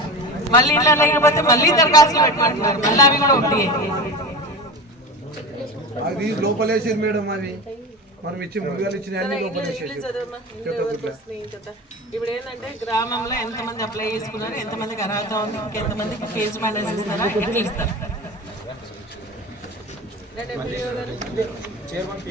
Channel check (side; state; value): both; normal; correlation 0.28